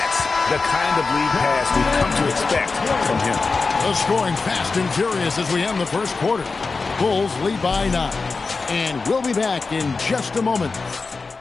the kind of lead pass we've come to expect from him. The scoring fast and furious as we end the first quarter. Bulls lead by 9. And we'll be back in just a moment.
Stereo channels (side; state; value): right; quieter; 4.2 dB